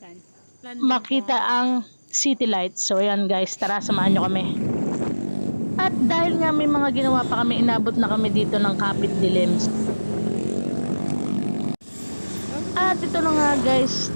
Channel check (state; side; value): inverted; both; correlation -1.00